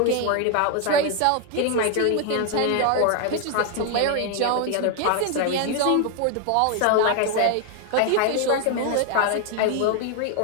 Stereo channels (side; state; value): both; different; correlation 0.01